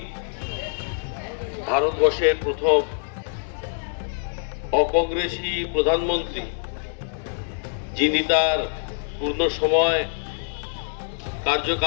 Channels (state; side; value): silent; right; 62 dB below the other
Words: ভারতবর্ষের প্রথম অকংগ্রেসী প্রধানমন্ত্রী, যিনি তার পূর্ণ সময়